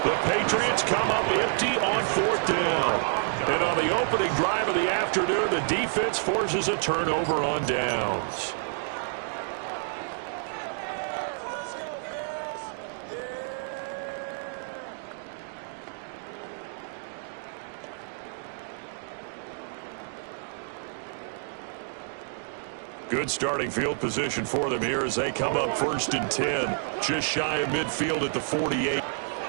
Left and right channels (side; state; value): left; silent; digital silence